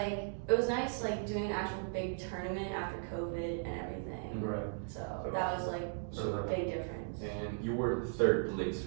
it was nice like doing an actual big tournament after COVID and everything. Right. So that was like a big difference. And you were third place,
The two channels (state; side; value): silent; left; digital silence